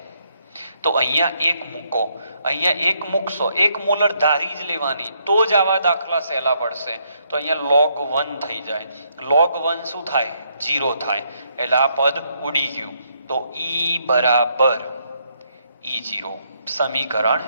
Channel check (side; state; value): both; inverted; correlation -0.74